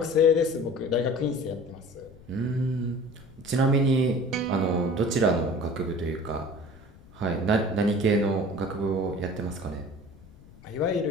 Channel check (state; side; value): noise; left; rumble, 22 dB below the sound